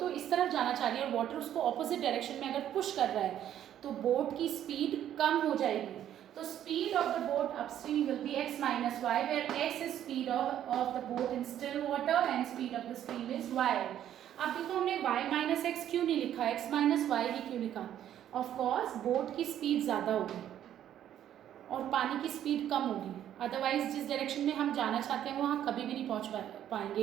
इस तरफ जाना चाह रही है और वाटर उसको ऑपोजिट डायरेक्शन में अगर पुश कर रहा है तो बोट की स्पीड कम हो जाएगी. तो speed of the boat upstream will be x minus y, where x is speed of the boat in still water and speed of the stream is y. अब देखो हमने y minus x क्यों नहीं लिखा, x minus y ही क्यों लिखा. Of course boat की speed ज़्यादा होगी और पानी की स्पीड कम होगी. अदरवाइज जिस डायरेक्शन में हम जाना चाहते हैं वहाँ कभी भी नहीं पहुँच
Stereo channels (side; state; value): left; quieter; 10.9 dB